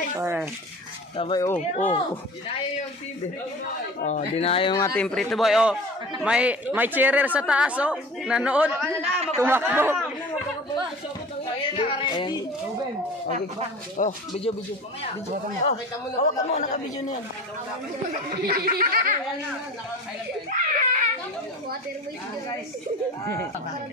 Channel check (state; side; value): normal; both; correlation 0.39